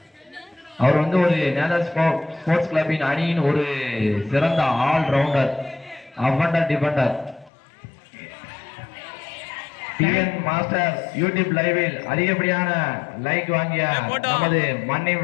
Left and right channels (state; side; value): drops out; right; at 7.5 s